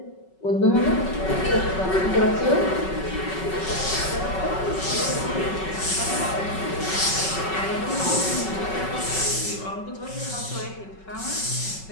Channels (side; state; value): right; late; 5.3 ms